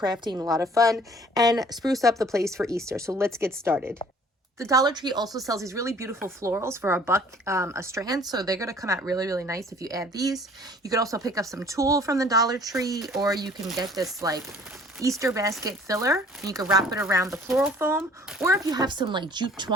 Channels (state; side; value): normal; both; correlation 0.54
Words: a lot of fun and spruce up the place for Easter. So let's get started. The Dollar Tree also sells these really beautiful florals for $1 a strand. So they're going to come out really, really nice if you add these. You could also pick up some tulle from the Dollar Tree, or you can get this like Easter basket filler. And you could wrap it around the floral foam. Or if you have some like jute